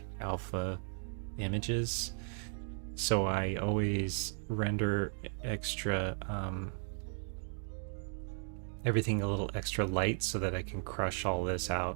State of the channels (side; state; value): left; silent; 54 dB below the other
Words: alpha images. So I always render extra everything a little extra light so that I can crush all this